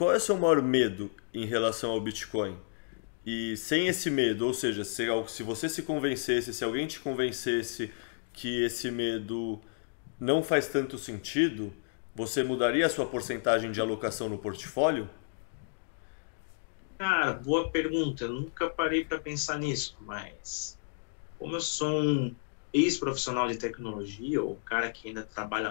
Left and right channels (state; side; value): silent; right; digital silence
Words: é o seu maior medo em relação ao Bitcoin? E sem esse medo, ou seja, se você se convencesse, se alguém te convencesse que esse medo não faz tanto sentido, você mudaria a sua porcentagem de alocação no portfólio? Cara, boa pergunta. Eu nunca parei para pensar nisso, mas como eu sou um ex-profissional de tecnologia, ou um cara que ainda